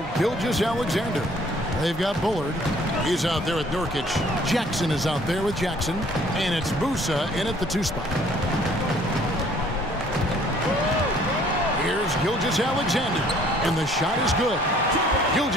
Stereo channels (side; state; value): both; normal; correlation 0.58